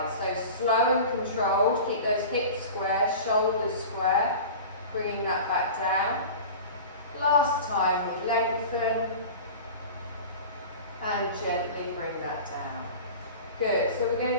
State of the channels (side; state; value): both; inverted; correlation -0.35